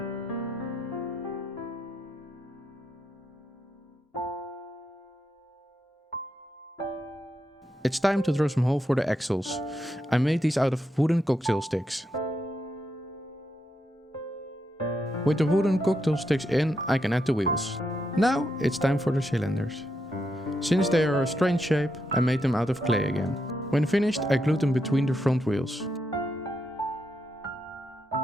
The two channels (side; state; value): both; normal; correlation 0.82